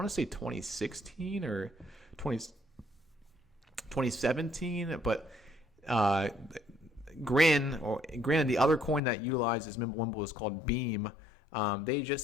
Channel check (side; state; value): right; drops out; at 9.0 s